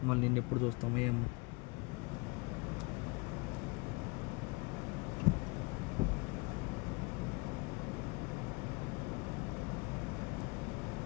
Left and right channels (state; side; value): quieter; right; 28.7 dB